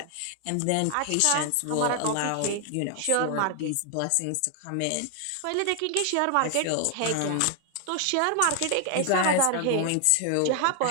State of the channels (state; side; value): different; both; correlation 0.00